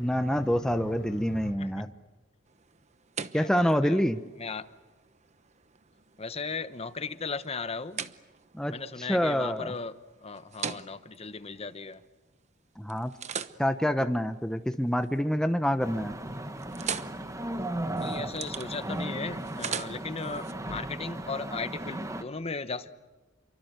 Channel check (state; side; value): normal; both; correlation 0.78